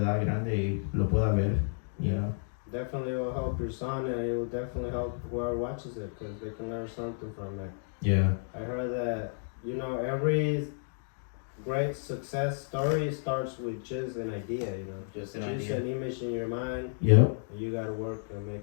grande y lo pueda ver, you know. Definitely will help your son, and it will definitely help whoever watches it because they can learn something from it. Yeah. I heard that, you know, every great success story starts with just an idea, you know. Just an image in your mind. Yep. And you gotta work and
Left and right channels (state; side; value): silent; right; digital silence